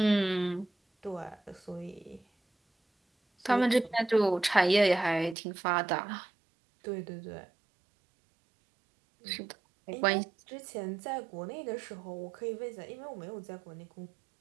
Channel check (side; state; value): left; drops out; at 5.4 s